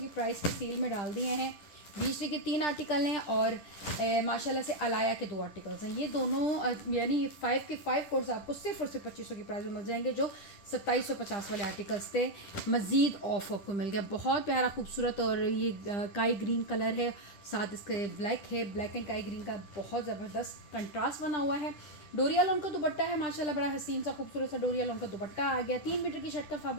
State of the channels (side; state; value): right; late; 10 ms